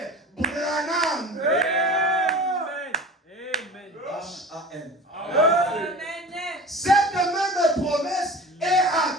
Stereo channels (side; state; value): both; normal; correlation 0.36